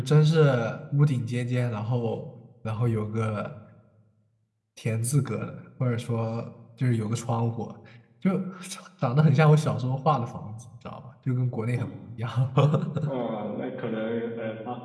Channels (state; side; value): identical; both; correlation 1.00